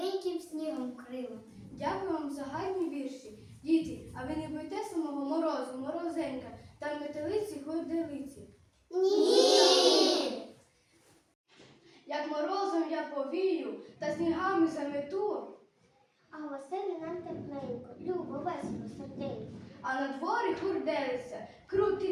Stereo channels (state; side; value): identical; both; correlation 1.00